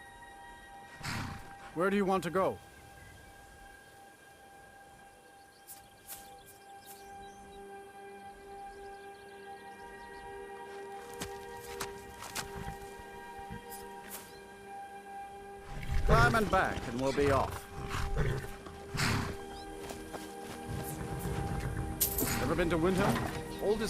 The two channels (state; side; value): identical; both; correlation 1.00